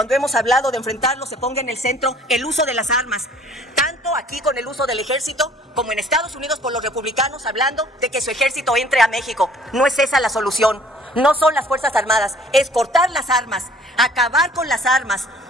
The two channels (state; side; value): normal; both; correlation 0.55